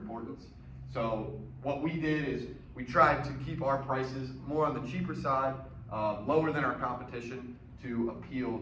So what we did is we tried to keep our prices more on the cheaper side, lower than our competition, to appeal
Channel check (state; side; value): identical; both; correlation 1.00